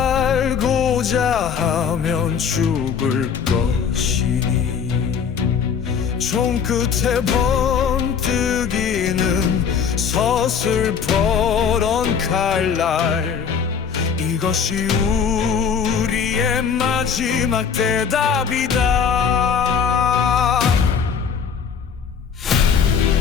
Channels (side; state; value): right; quieter; 6.8 dB